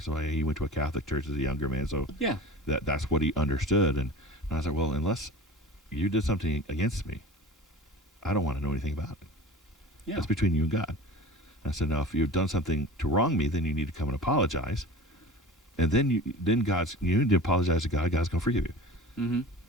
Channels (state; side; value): normal; both; correlation 0.36